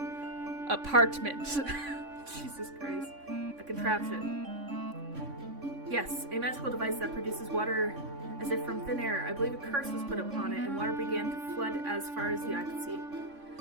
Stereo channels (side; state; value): left; late; 3.5 ms